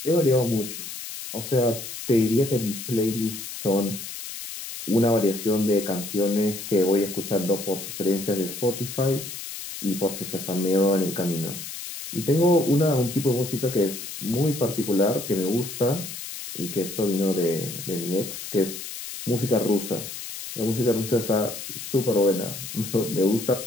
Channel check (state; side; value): noise; left; hiss, 9 dB below the sound